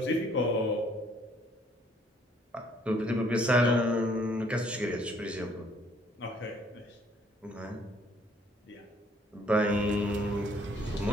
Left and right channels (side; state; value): both; normal; correlation 0.62